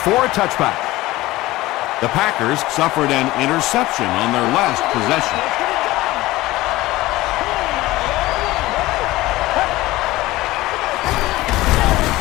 a touchback. The Packers suffered an interception on their last possession.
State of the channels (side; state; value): right; quieter; 18.2 dB